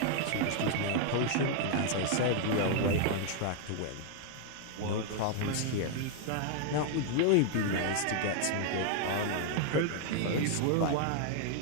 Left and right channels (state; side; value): different; both; correlation 0.00